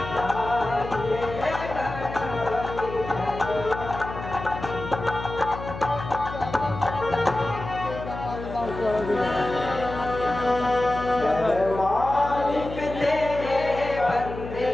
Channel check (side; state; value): left; noise; hum, 10 dB below the sound